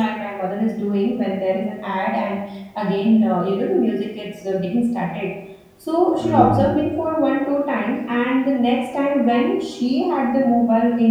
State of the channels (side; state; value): both; identical; correlation 1.00